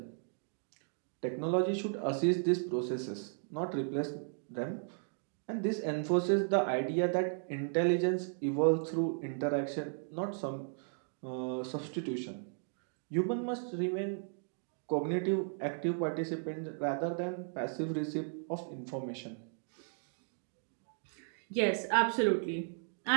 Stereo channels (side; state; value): left; silent; digital silence